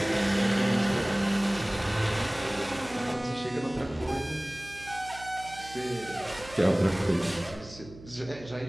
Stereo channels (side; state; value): right; noise; hum, 18 dB below the sound